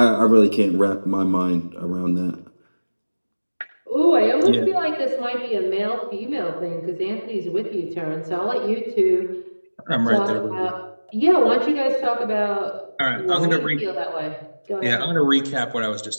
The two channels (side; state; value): both; inverted; correlation -1.00